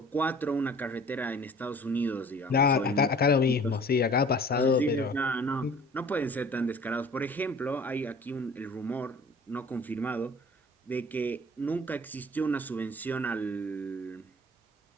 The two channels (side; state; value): both; normal; correlation 0.48